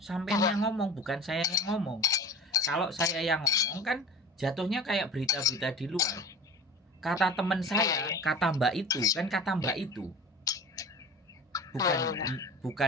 yang ngomong, bukan saya yang ngomong. Kalau saya yang ngomong kan jatuhnya kayak berita-berita di luar. Kata teman saya, kata Mbak itu.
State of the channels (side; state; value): both; normal; correlation 0.37